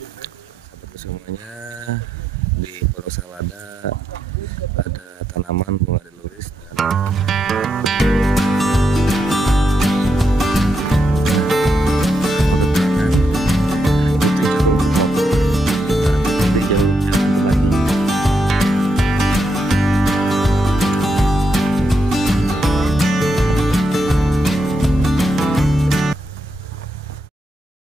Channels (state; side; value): normal; both; correlation 0.82